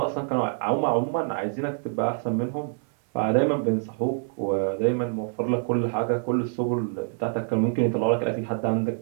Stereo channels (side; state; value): left; silent; digital silence